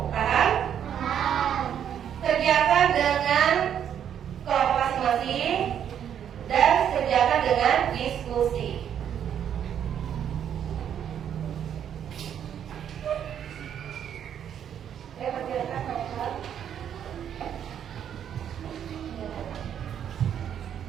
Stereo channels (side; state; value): left; quieter; 9.1 dB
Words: Paham? Kerjakan dengan kelompok masing-masing dan kerjakan dengan diskusi. Kerjakan hal-hal.